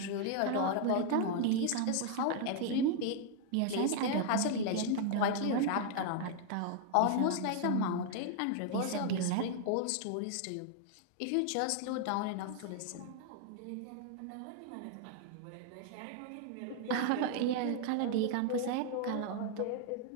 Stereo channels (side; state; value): both; different; correlation 0.00